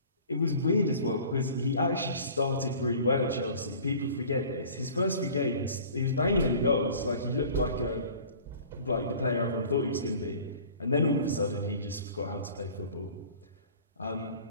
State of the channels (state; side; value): inverted; both; correlation -0.46